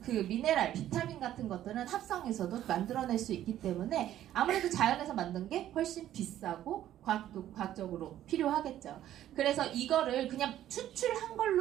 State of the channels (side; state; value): left; quieter; 12.3 dB